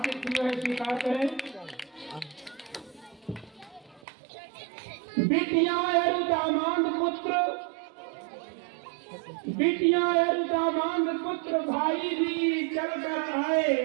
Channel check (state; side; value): drops out; left; at 4.0 s